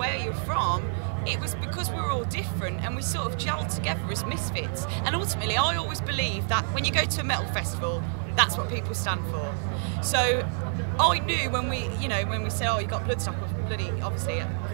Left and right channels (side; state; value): left; silent; 57 dB below the other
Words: you're from. It was because we were all different and we sort of gelled together as misfits. And ultimately, I always believe that when you go to a metal festival, that's what people stand for. So I knew when we said, oh, you got Bloodstock, I was bloody, obviously,